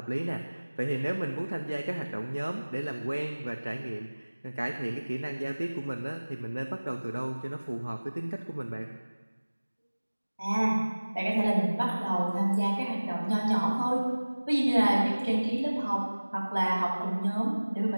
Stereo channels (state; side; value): inverted; both; correlation -1.00